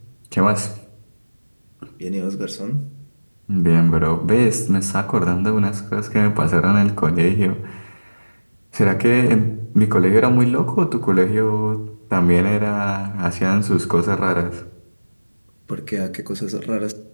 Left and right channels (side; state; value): both; inverted; correlation -1.00